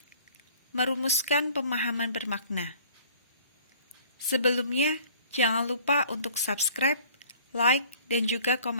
merumuskan pemahaman bermakna. Sebelumnya, jangan lupa untuk subscribe, like, dan juga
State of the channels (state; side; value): inverted; both; correlation -0.52